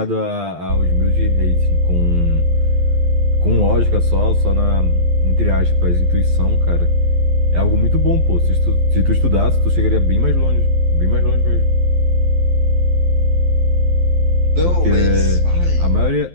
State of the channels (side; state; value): left; late; 12 ms